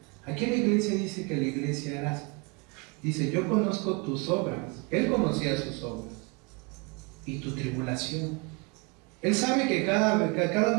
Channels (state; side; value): quieter; left; 29.7 dB